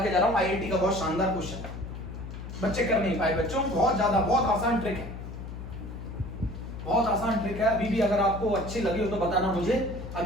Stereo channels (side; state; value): left; noise; hum, 9 dB below the sound